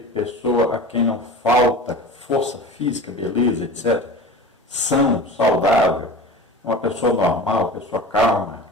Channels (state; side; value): normal; both; correlation 0.34